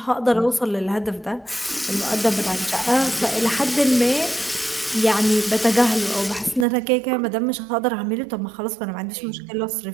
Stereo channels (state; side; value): drops out; left; at 6.7 s